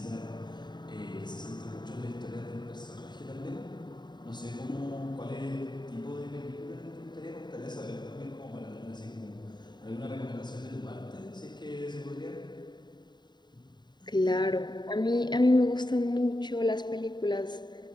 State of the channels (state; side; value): late; right; 0.21 ms